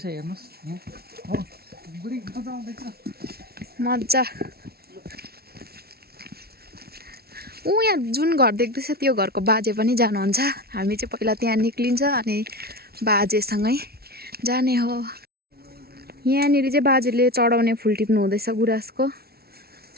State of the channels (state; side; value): late; left; 0.45 ms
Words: हेर्नुहोस् हो बुढी मजा आउँदैछ, मजा। यहाँ जुन घर देख्दैछ त्यो घरको बाजे पनि जानुहुन्छ। हामी चाहिँ पहिला त्यहाँ निक्लिन्छ अनि बाजेसँगै जाने हो। यहाँनिर चाहिँ बाजेले चढाउने फुल टिप्नु हुँदैछ गुराँसको।